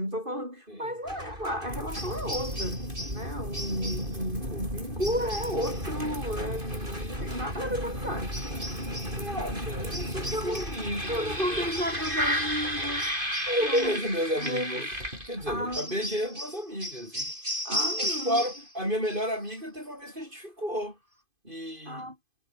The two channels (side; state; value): left; late; 2.5 ms